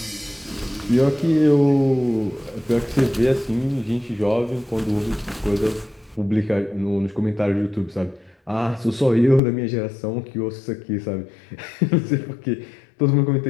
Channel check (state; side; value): drops out; right; at 9.4 s